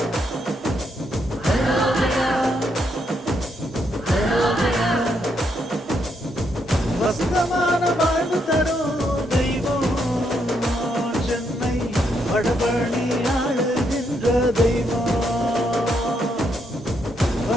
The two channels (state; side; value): normal; both; correlation 0.77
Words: வசந்தமான வாழ்வு தரும் தெய்வம் சென்னை வடபழனி ஆளுகின்ற தெய்வம்.